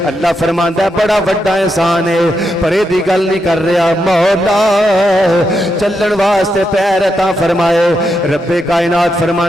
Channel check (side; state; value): both; normal; correlation 0.83